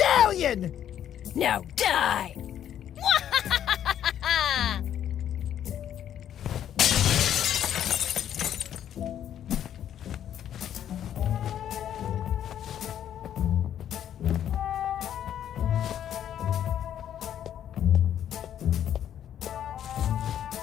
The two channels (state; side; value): quieter; right; 10.3 dB